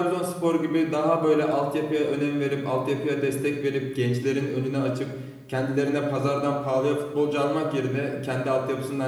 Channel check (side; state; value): both; identical; correlation 1.00